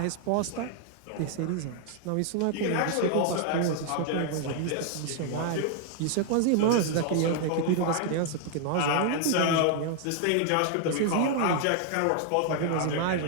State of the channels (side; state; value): both; different; correlation 0.00